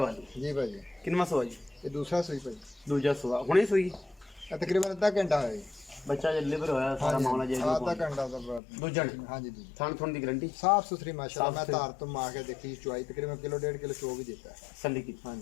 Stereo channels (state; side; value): drops out; right; at 8.6 s